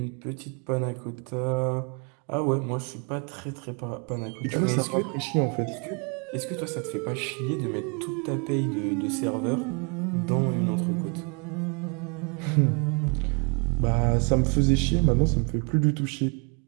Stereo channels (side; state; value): left; quieter; 35.5 dB